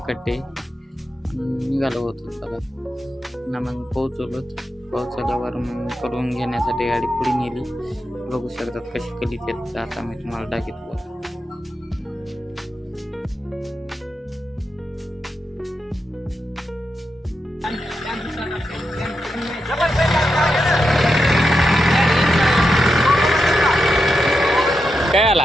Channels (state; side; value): normal; both; correlation 0.87